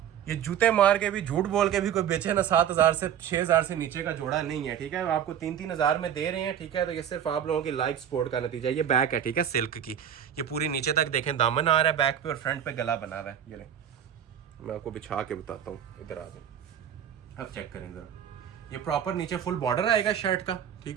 ये जूते मार के भी, झूठ बोल के भी कोई बेचे ना 7000 से 6000 से नीचे का जोड़ा नहीं है, ठीक है। आपको 3-3 हजार में दे रहे हैं, ठीक है। तो ये सिर्फ आप लोगों की लाइव सपोर्ट का नतीजा है। ये बैक है, ठीक है, सिल्क की। ये पूरी नीचे तक देखें दामन आ रहा है बैक पे, और फ्रंट पे गला बना हुआ है। ये ले मैं आपको बिछा के बताता हूँ, इधर आ जाए, अब चेक करें जरा। ये प्रॉपर नीचे फुल बॉर्डर आएगा शर्ट का,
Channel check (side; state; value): left; quieter; 9.4 dB